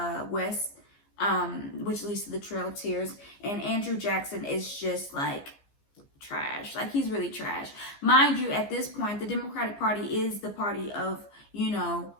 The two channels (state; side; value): late; right; 15 ms